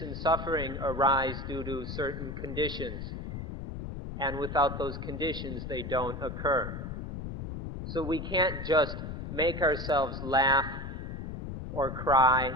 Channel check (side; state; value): left; noise; rumble, 6 dB below the sound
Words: and suffering arise due to certain conditions, and without those conditions they don't occur. So we can't just make ourselves laugh or cry,